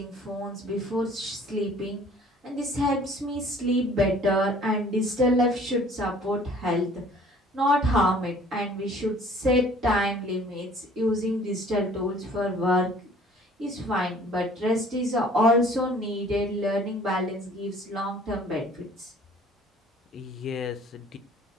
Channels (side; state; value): both; normal; correlation 0.53